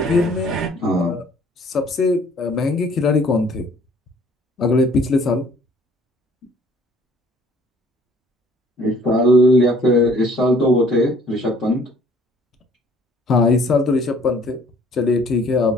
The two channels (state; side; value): normal; both; correlation 0.57